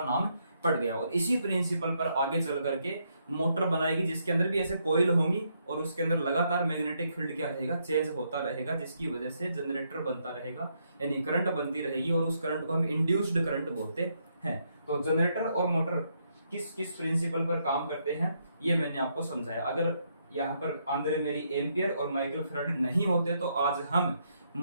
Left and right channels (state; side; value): inverted; both; correlation -0.76